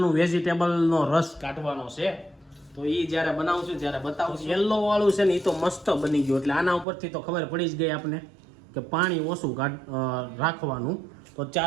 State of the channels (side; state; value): left; drops out; at 6.9 s